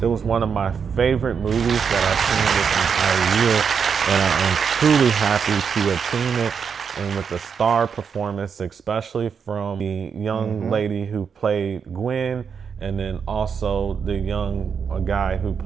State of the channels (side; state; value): left; quieter; 6.5 dB